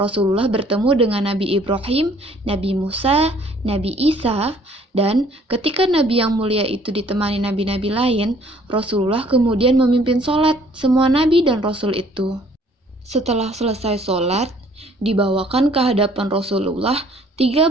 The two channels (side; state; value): both; normal; correlation 0.59